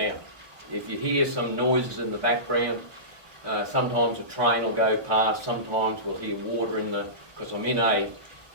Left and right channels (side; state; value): left; late; 1.1 ms